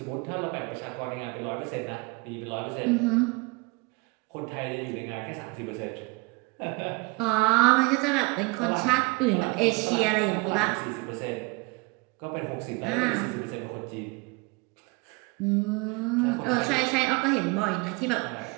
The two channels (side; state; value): left; quieter; 26.6 dB